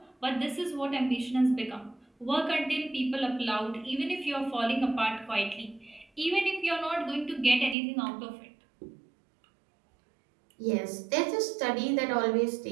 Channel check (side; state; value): left; drops out; at 7.8 s